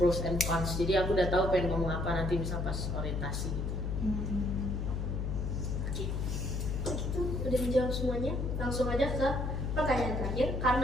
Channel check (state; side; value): noise; left; hum, 1 dB below the sound